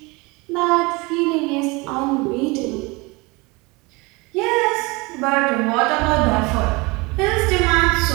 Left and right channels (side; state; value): left; quieter; 25.5 dB